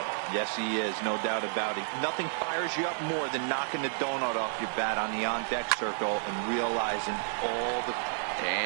Yes, he is, no doubt about it. Nothing fires you up more than knocking the donut off your bat on the on-deck circle and realizing all the...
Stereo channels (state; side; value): silent; left; 57 dB below the other